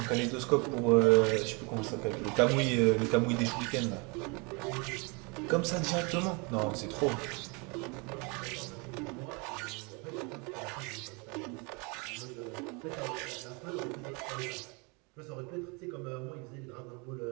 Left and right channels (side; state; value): left; quieter; 30.5 dB